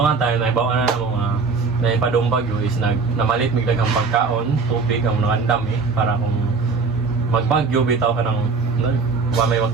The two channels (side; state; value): left; quieter; 4.6 dB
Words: nga tayo, naibawa na ng mga naipadong bagyo is namalit biglang ang pagkaon, tubig ang mga dami para kung magbagyo, bitaw ka ng may